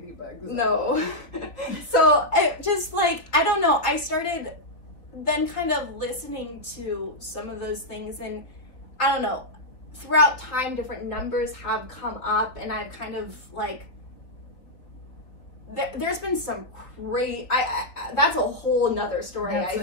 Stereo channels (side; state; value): right; late; 4.0 ms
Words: No. So it just like, I don't know. I started then kind of listening to some of those things, and I don't know, throughout time, different numbers have come up, and I've kind of like, there's been some great, that's a whole nother story. I